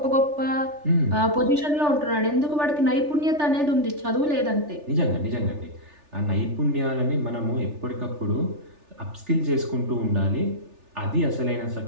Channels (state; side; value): late; left; 3.4 ms